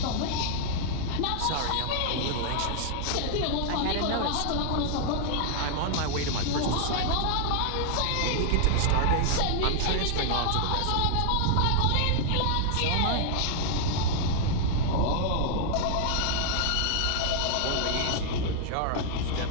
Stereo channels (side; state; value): both; different; correlation -0.01